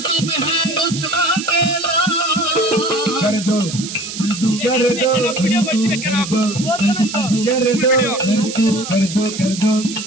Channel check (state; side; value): noise; right; hiss, 9 dB below the sound